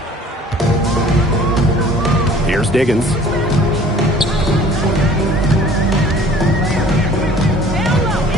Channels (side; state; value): both; normal; correlation 0.50